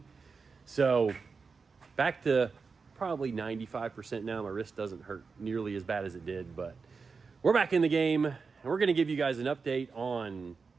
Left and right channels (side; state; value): left; quieter; 4.9 dB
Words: So back to probably 95% now. My wrist doesn't hurt nearly as bad as it did, but we're back in the game, and we're going to give you guys an update on